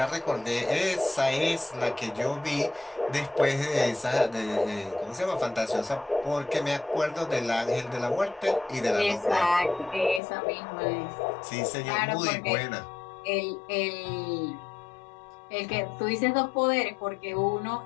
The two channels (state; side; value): drops out; right; at 10.2 s